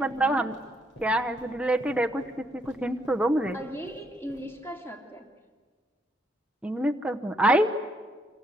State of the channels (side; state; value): both; normal; correlation 0.74